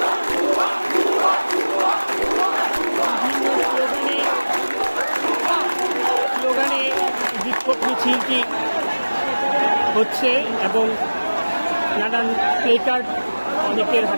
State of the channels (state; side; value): inverted; both; correlation -1.00